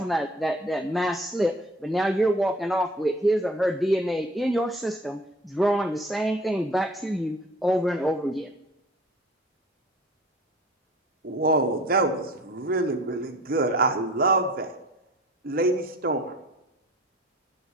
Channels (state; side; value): normal; both; correlation 0.48